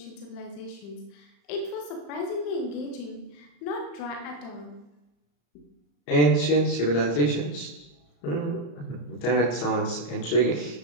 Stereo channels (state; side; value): late; right; 34 ms